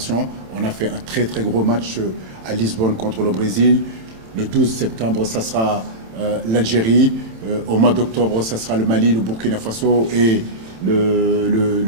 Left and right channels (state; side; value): late; left; 27 ms